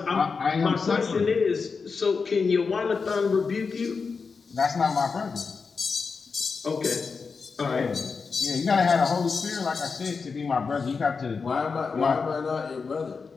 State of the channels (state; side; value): quieter; right; 5.0 dB